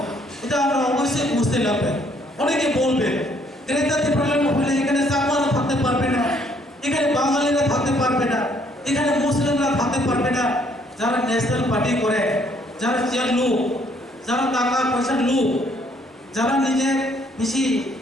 এটা আমরা অবশ্যই বুঝতে লাগবে। অনেকে বলবে গ্রেটার ত্রিপুরাল্যান্ড হলে এখানে চাকমারা থাকতে পারবে না, এখানে বাঙালিরা থাকতে পারবে না, এখানে মুসলিমরা থাকতে পারবে না। যারা ন্যাশনাল পার্টি করে, যারা চেয়ার লোক, যারা টাকা পয়সার লোক, যারা নিজের বেশি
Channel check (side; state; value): both; normal; correlation 0.66